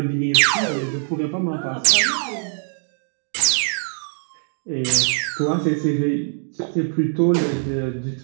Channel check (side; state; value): left; silent; 64 dB below the other